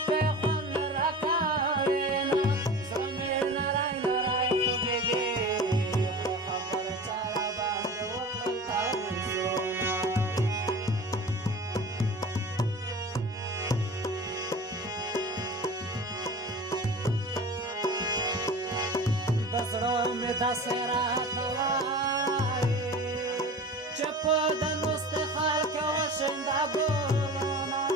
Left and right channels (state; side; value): normal; both; correlation 0.36